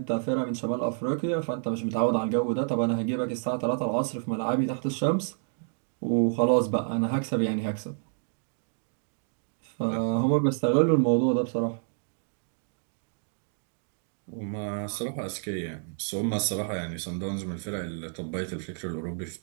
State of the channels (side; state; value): left; silent; 59 dB below the other